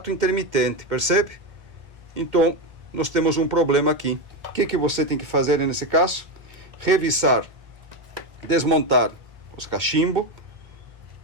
intermitente, percebe? Então, nós temos um problema aqui. O que você tem que fazer nesse caso? Revisar, desmontar os cachimbos,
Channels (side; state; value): left; late; 1.6 ms